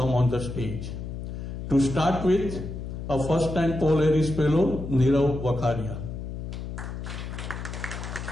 on the stage. To start with, A first-time Paul Harris Fellow, Nirav Vakharia.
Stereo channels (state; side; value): noise; left; hum, 7 dB below the sound